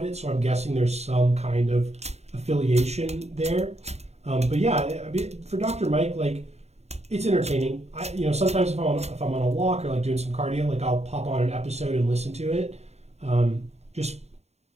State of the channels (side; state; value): left; late; 0.31 ms